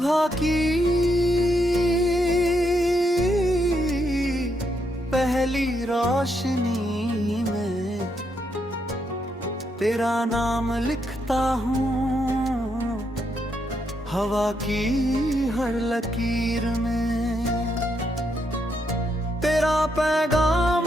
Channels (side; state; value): both; normal; correlation 0.79